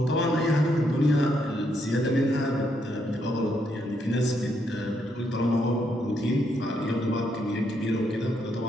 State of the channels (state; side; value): normal; both; correlation 0.76